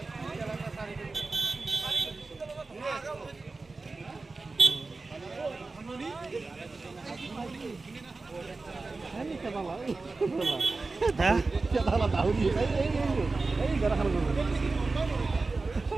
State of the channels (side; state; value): left; quieter; 3.7 dB